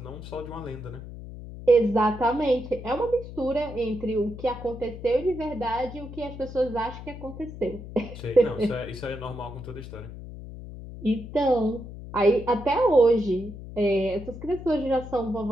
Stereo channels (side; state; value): left; noise; hum, 12 dB below the sound